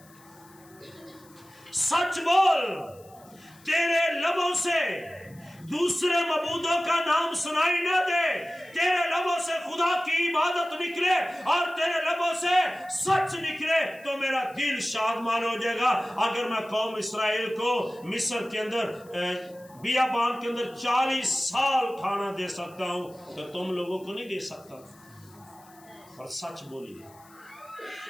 سچ بول، تیرے لبوں سے دوسرے معبودوں کا نام سنائی نہ دے، تیرے لبوں سے خدا کی عبادت نکلے اور تیرے لبوں سے سچ نکلے تو میرا دل شادمان ہو جائے گا. اگر میں قوم اسرائیل کو مصر کے اندر بیابان کے اندر 40 سال کھانا دے سکتا ہوں تو تم لوگوں کو نہیں دے سکتا. اور سچ بولیے.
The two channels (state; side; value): noise; left; hiss, 27 dB below the sound